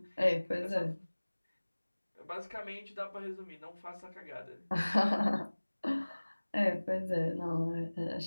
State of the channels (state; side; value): inverted; both; correlation -1.00